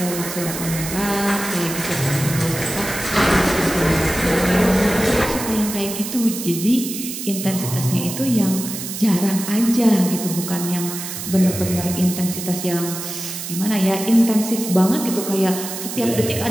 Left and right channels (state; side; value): noise; right; hiss, 7 dB below the sound